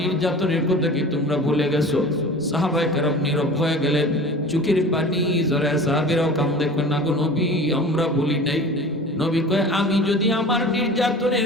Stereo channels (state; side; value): normal; both; correlation 0.39